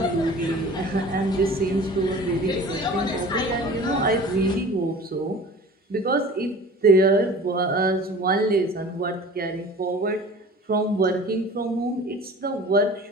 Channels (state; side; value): normal; both; correlation 0.42